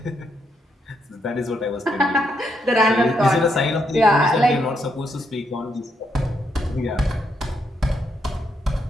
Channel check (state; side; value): normal; both; correlation 0.77